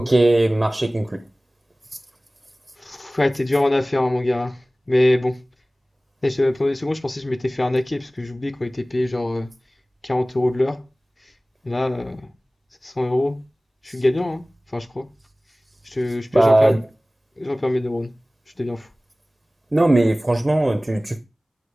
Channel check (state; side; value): normal; both; correlation 0.98